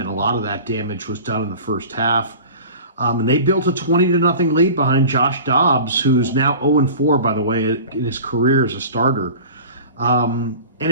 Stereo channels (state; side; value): inverted; both; correlation -0.39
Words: a lot of that damage was done in the first half. And they built a 20-0 lead behind Josh Dobbs, who's now 0-4, by the way, in his career as a starter. And